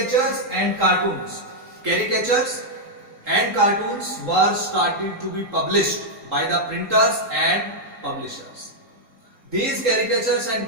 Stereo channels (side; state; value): left; late; 3.7 ms